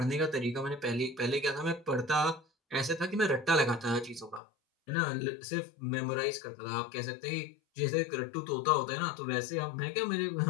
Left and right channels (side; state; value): right; drops out; at 4.4 s